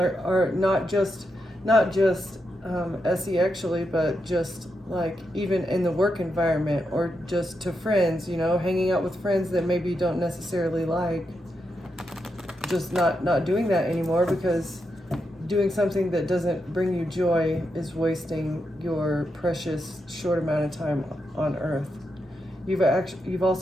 not just SE-actually, but just like even in the work environment, or just to friends, hanging out with friends that maybe you don't necessarily like, just not doing that anymore, because doing something that doesn't bring you joy is wasting your precious short amount of time on earth. You've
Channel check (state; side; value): normal; both; correlation 0.84